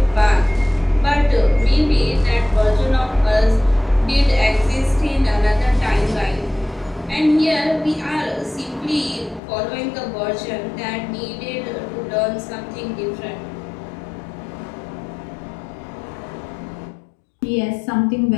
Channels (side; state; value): right; drops out; at 9.4 s